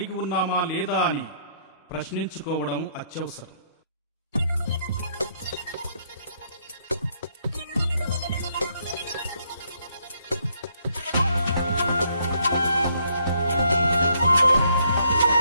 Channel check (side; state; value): both; inverted; correlation -0.70